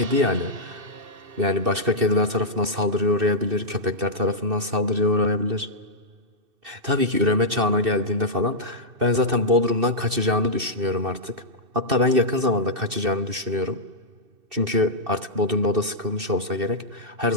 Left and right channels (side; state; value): left; late; 2.6 ms